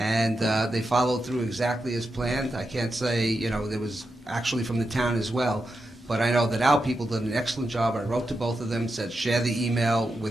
they followed through exactly as planned. I can't say, there was actually from the town as well, but I know that our people did an excellent job. I wrote to both of them, said share the email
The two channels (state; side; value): normal; both; correlation 0.87